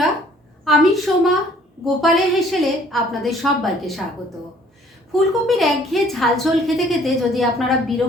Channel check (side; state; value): both; normal; correlation 0.57